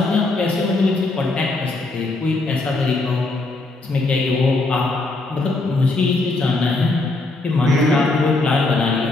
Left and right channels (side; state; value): right; quieter; 3.1 dB